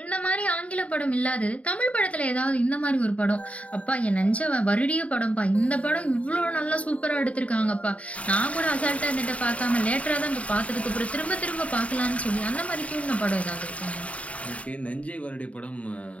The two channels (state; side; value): late; right; 0.066 ms